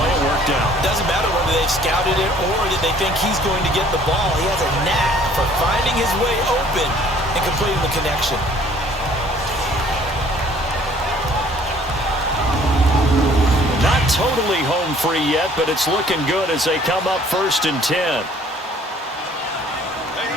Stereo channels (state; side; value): normal; both; correlation 0.57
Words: It worked out. Doesn't matter whether they've scouted it or that they think he's going to get the ball. He has a knack for finding his way open and completing the connection. Not totally home free yet, but it's looking good as they come up 1st and 10.